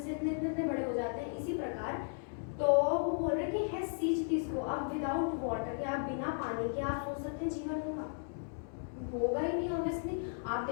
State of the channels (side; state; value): right; silent; digital silence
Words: इतने बड़े हो जाते हैं, इसी प्रकार। तो वो बोल रहे कि है सींचती इसको। अब विदाउट वाटर, या बिना पानी के आप सोच सकते हैं जीवन होगा ही नहीं। ऑब्वियसली आप